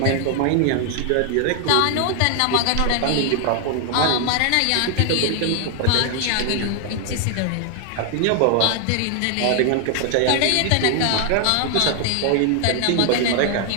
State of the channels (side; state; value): both; different; correlation 0.00